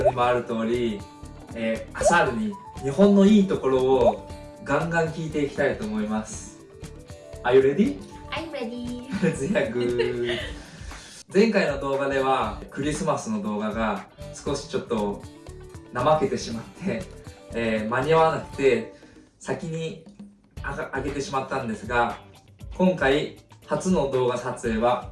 にもある通り、アサールに日本のいいところをガンガン聞いていきたいと思います。Are you ready? I'm ready. ゼアグ前回の動画ではクリスマスの動画が少しちょっと怠けてしまって、間に合わなくて先に上げてしまったんですが、今回初の動画撮影は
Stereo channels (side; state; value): both; identical; correlation 1.00